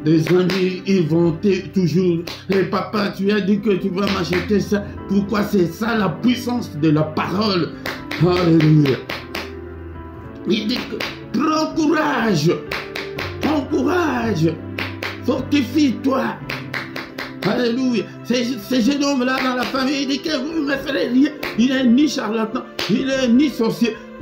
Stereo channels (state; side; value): identical; both; correlation 1.00